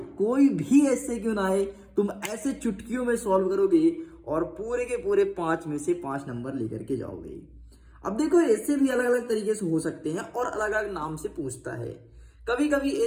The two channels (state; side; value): identical; both; correlation 1.00